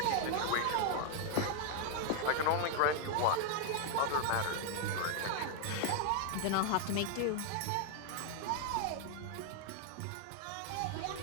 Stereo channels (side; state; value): both; different; correlation 0.00